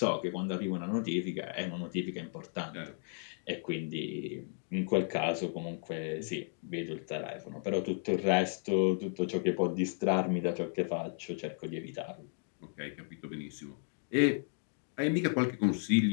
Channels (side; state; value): right; silent; 55 dB below the other